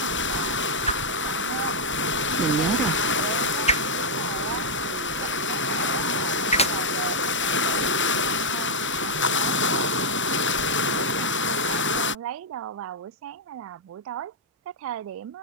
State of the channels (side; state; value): both; normal; correlation -0.04